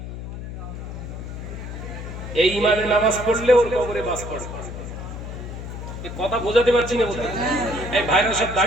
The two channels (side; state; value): left; noise; hum, 9 dB below the sound